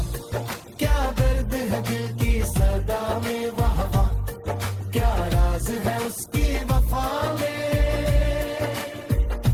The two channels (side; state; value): both; identical; correlation 1.00